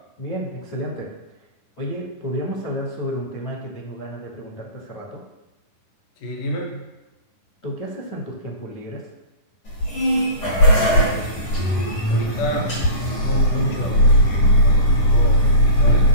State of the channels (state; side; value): late; right; 9.9 ms